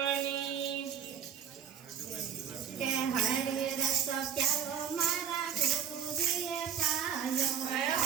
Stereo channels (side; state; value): left; quieter; 8.2 dB